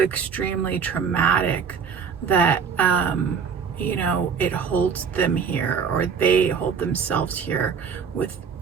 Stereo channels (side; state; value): left; quieter; 6.4 dB